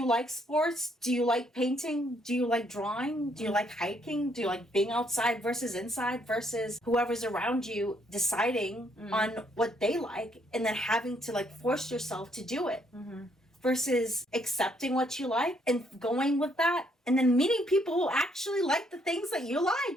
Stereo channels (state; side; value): normal; both; correlation 0.70